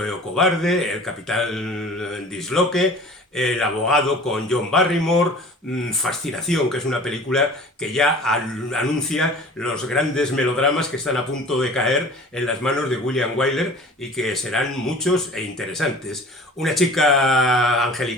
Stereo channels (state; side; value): normal; both; correlation 0.44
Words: o Cobarde, El Capitán Disloque, El Abogado con John Barrymore, Fascinación, que es una película que ya anuncia los grandes melodramas que están a punto de caer en las manos de William Wyler y que serán muchos e interesantes. Una chica